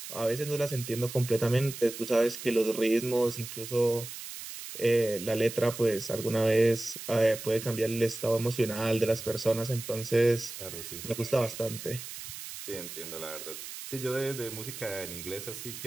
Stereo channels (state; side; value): noise; right; hiss, 10 dB below the sound